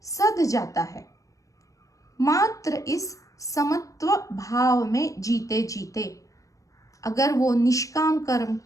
सध जाता है। मात्र इस समत्व भाव में जीते जीते अगर वो निष्काम कर्म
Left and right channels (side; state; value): right; late; 0.16 ms